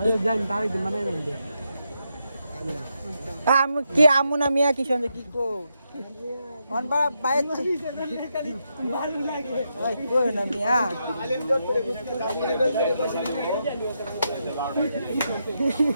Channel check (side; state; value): both; inverted; correlation -0.83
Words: জানি তাই দিন মানে আমি কি আমু না মিয়া কি সঙ্গে কি কো অন বা বাইক ভালো লাগে ওই কই না মিয়া